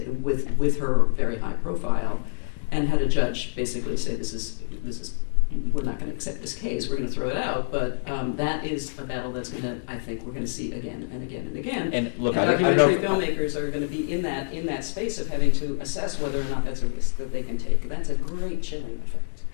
with her very high profile, and had a judge basically say this is we're not going to accept this case, we're going to throw it out. But that is a battle that's going to, I think, we're going to see again and again and again. And look, and I don't documentary filmmakers are going to be in that space of having to assess whether or not that's a risk that they can take. That's a great chilling effect.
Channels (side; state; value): right; silent; digital silence